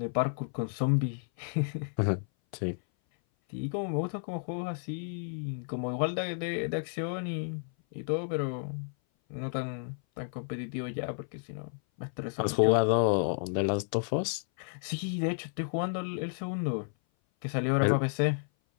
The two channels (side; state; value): right; silent; 56 dB below the other